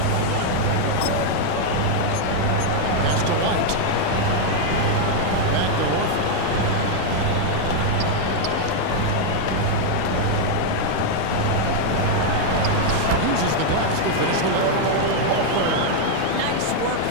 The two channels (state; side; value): different; both; correlation 0.00